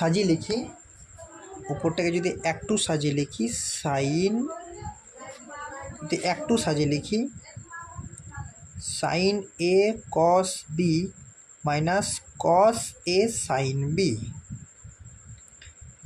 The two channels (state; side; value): identical; both; correlation 1.00